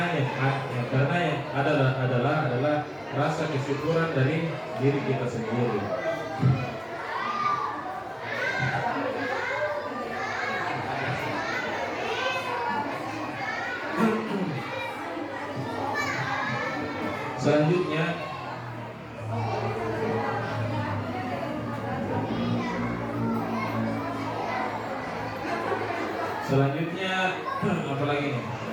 yang adalah rasa kesyukuran dari diri kita sendiri. Selanjutnya apa lagi nih?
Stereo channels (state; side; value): identical; both; correlation 1.00